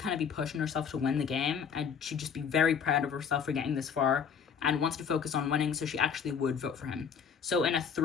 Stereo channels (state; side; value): quieter; right; 6.9 dB